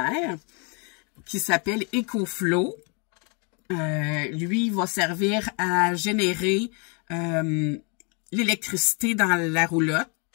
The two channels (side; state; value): right; quieter; 35.1 dB